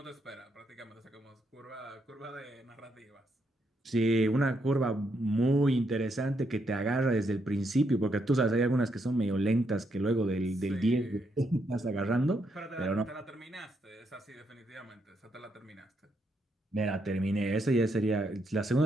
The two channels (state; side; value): normal; both; correlation 0.78